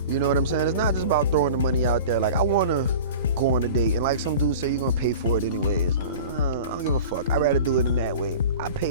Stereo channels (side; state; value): both; inverted; correlation -0.38